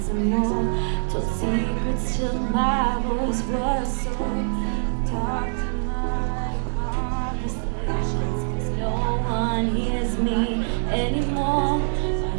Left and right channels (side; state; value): left; silent; digital silence